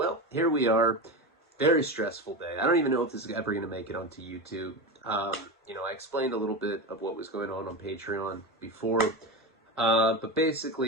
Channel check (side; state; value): both; normal; correlation 0.21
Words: here we are. Very stressful day. I don't even know if this is ever going to make it onto YouTube. I explained a little bit of what was going on Patreon before. But